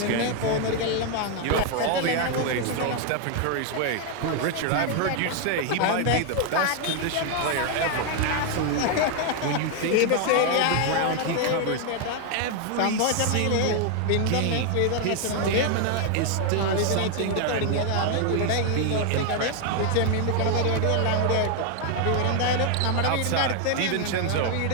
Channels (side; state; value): both; different; correlation 0.00